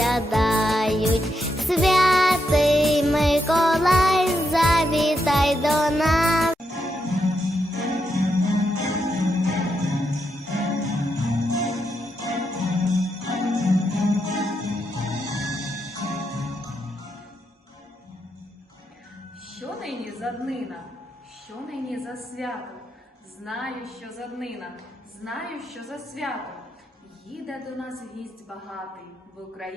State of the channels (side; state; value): both; normal; correlation 0.82